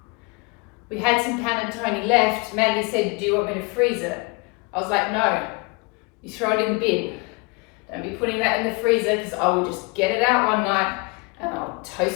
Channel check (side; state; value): right; quieter; 28.9 dB